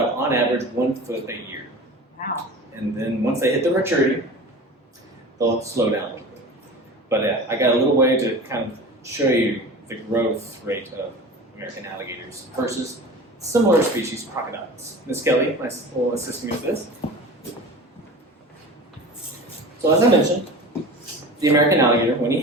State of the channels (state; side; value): normal; both; correlation 0.36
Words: on average, 1 foot a year. Wow. And then once they hit their maturity, they'll slow down a little bit. But I got a little way to kind of show you the growth rate of American alligators versus similar species, crocodiles. Miss Kelly will assist me with this. So as I mentioned, the American alligator, when he